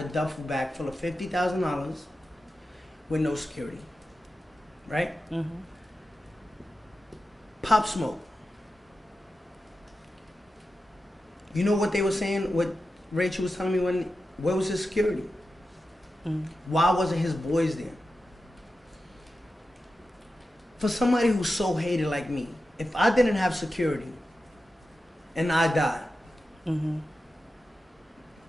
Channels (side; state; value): both; normal; correlation 0.91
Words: duffel bag full of $50,000 with no security? Right? Mm-hmm. Pop Smoke. You know what they were saying? What Rachel was telling me where was his security? Mm-hmm. Why wasn't his boys there? For somebody who's so hated like me, if I didn't have security and I died, mm-hmm.